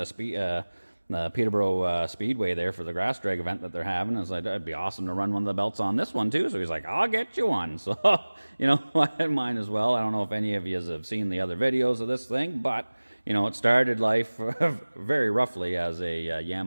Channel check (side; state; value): both; inverted; correlation -1.00